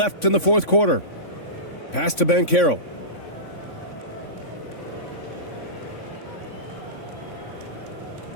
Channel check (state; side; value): late; right; 3.5 ms